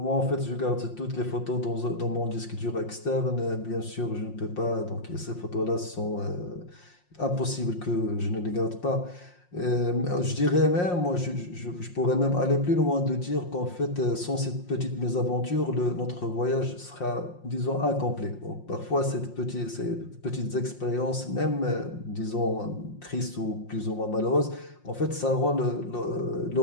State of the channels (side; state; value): right; late; 5.6 ms